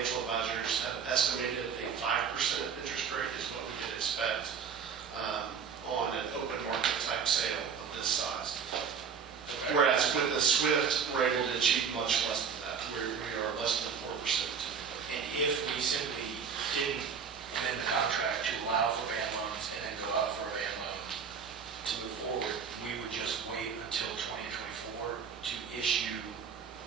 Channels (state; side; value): quieter; left; 6.5 dB